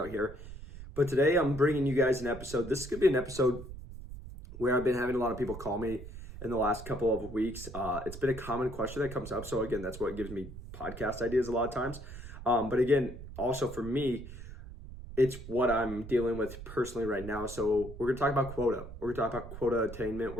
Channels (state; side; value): noise; right; rumble, 12 dB below the sound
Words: here. But today I'm bringing you guys an episode. This is going to be an episode where I've been having a lot of people call me in the last couple of weeks. It's been a common question that comes up. So again, that's what gives me podcast ideas a lot of times. But again, also for me, it's what I'm dealing with personally right now. So we're going to talk about quota. We're going to talk about quota attainment.